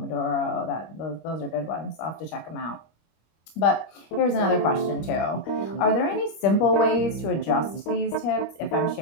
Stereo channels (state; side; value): late; right; 25 ms